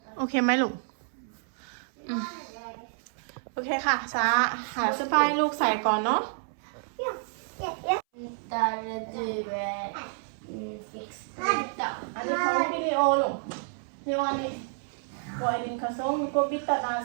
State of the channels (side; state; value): left; silent; 58 dB below the other